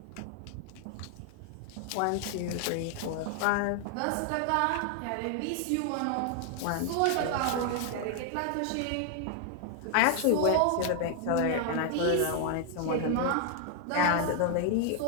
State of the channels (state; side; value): different; both; correlation 0.00